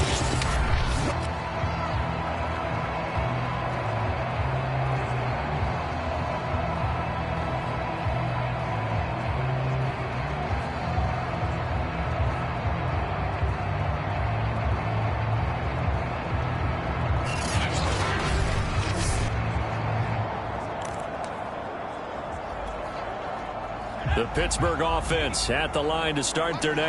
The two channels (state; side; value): identical; both; correlation 1.00